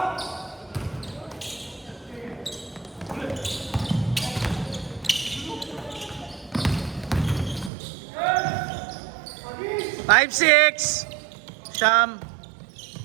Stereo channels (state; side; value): drops out; left; at 7.7 s